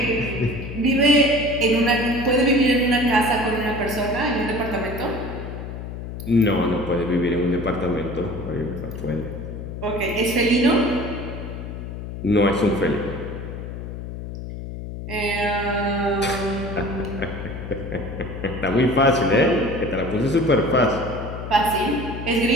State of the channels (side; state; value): left; noise; hum, 8 dB below the sound